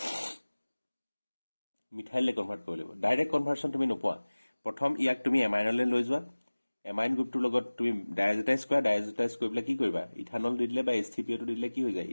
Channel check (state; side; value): inverted; both; correlation -1.00